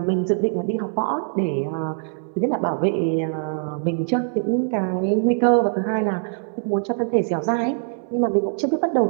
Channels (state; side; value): silent; left; digital silence